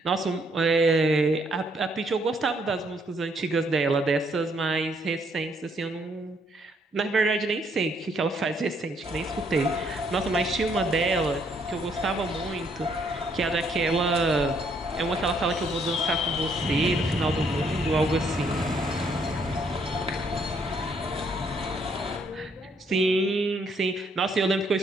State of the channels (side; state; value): both; normal; correlation 0.69